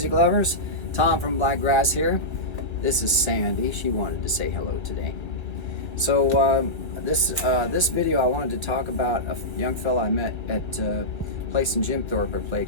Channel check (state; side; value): late; right; 1.1 ms